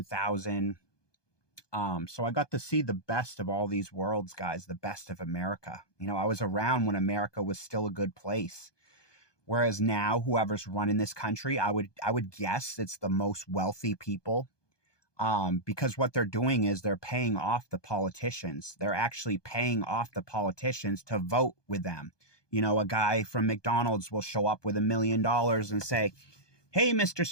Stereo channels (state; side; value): late; right; 1.2 ms